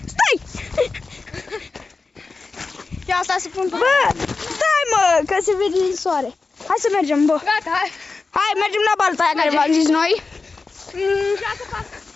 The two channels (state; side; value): quieter; right; 4.1 dB